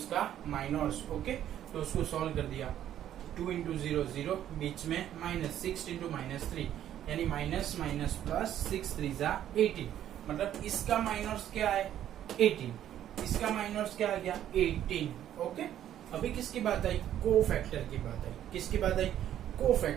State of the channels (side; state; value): left; quieter; 11.2 dB